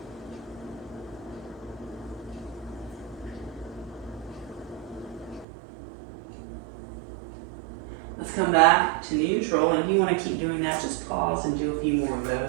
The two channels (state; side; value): drops out; left; at 5.5 s